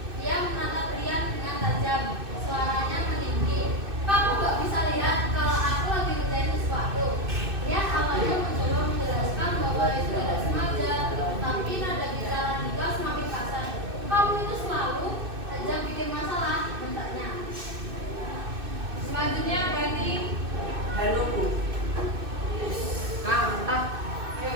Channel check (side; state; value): left; late; 2.6 ms